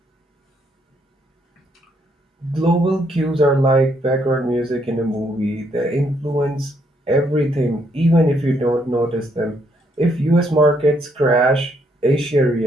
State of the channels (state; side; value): normal; both; correlation 0.72